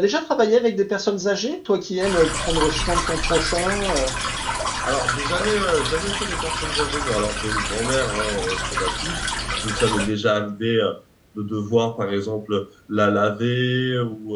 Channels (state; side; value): identical; both; correlation 1.00